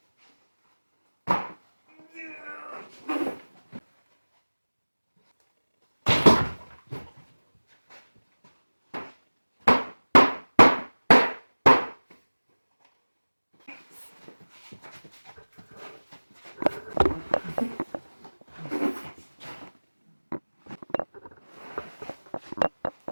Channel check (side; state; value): both; inverted; correlation -1.00